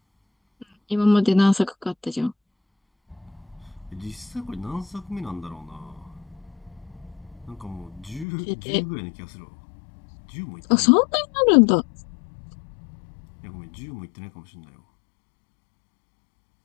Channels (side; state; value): right; drops out; at 8.2 s